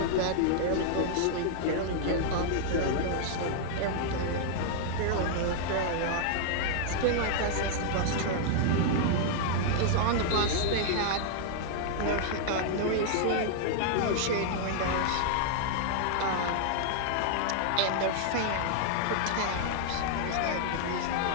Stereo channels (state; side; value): different; both; correlation -0.01